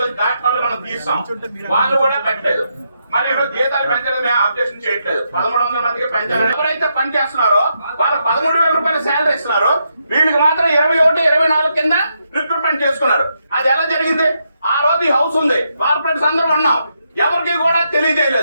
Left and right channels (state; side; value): inverted; both; correlation -0.81